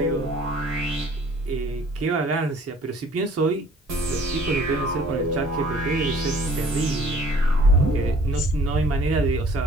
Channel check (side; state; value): both; normal; correlation 0.54